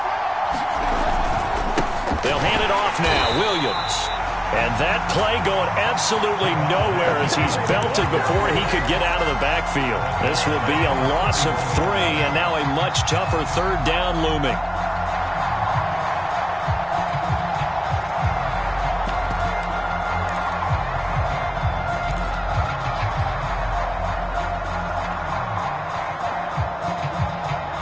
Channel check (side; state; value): both; identical; correlation 1.00